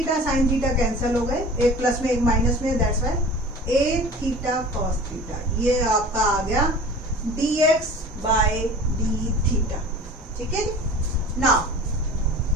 थीटा कैंसिल हो गए, एक प्लस में एक माइनस में, that's why a theta cos theta, ये आपका आ गया dx बाय डी थीटा। ठीक है, नाउ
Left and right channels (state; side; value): normal; both; correlation 0.41